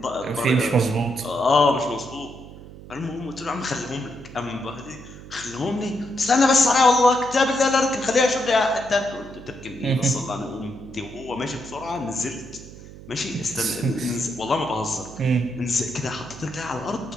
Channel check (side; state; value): right; noise; hum, 16 dB below the sound